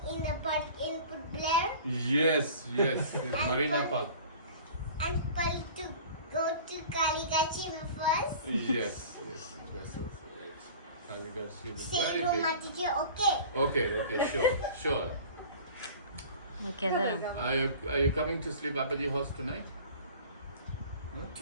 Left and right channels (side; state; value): both; inverted; correlation -0.42